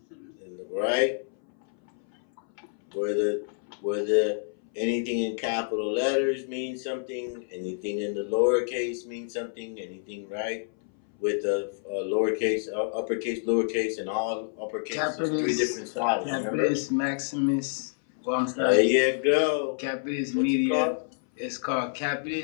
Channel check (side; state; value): right; silent; 59 dB below the other